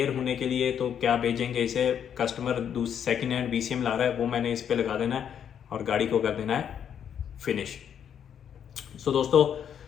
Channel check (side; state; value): right; quieter; 8.6 dB